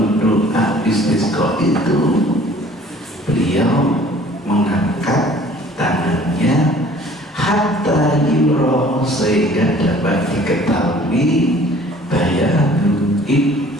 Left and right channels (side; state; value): both; normal; correlation 0.52